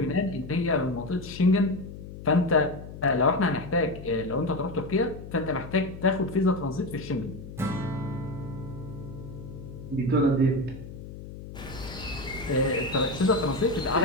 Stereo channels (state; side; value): noise; left; hum, 12 dB below the sound